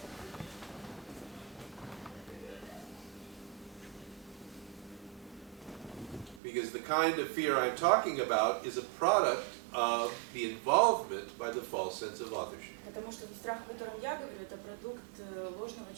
Because the kind of fear I'm talking about is a product of the involvement by the false sense of authorship. Потому что страх, о котором я говорю, это продукт ложного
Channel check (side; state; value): left; drops out; at 6.4 s